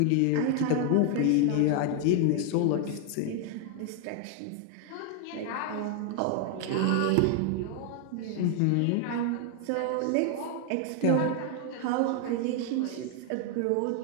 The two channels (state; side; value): different; both; correlation 0.00